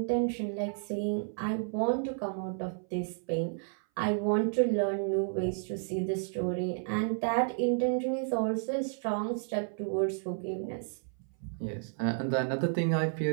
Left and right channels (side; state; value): left; silent; 57 dB below the other